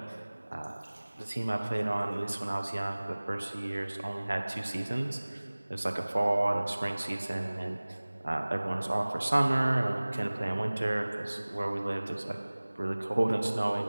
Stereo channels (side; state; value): both; inverted; correlation -1.00